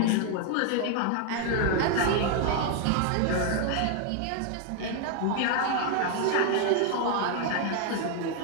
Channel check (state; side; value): different; both; correlation 0.01